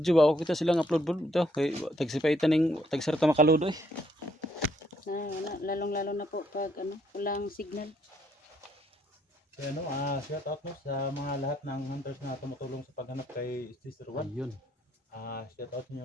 ba? Ako kita silang upload po ito. Kay tagsipaitan ng tagsarta makaludo eh. Lalong-lalo na po pag walang signal. Kaya shout out mo sa mga lahat ng hunters na tumutulong sa paghanap kay Sister Juan. Ayun. Shout out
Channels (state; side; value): normal; both; correlation 0.70